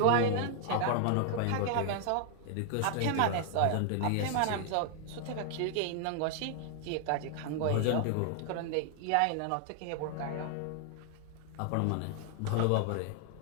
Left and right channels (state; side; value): different; both; correlation 0.00